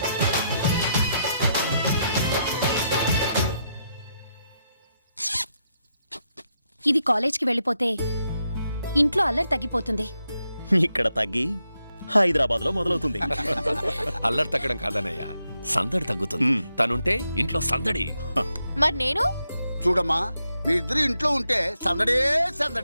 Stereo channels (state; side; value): inverted; both; correlation -0.82